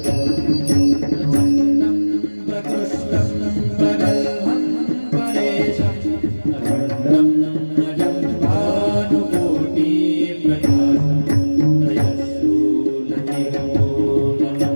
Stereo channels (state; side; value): inverted; both; correlation -1.00